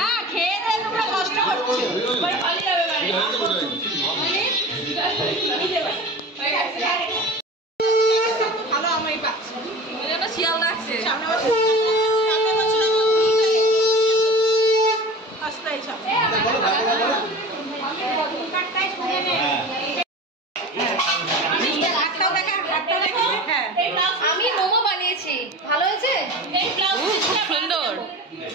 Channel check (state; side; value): normal; both; correlation 0.35